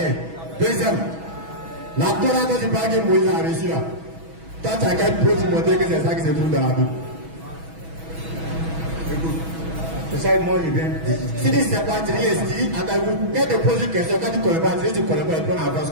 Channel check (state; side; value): late; left; 6.2 ms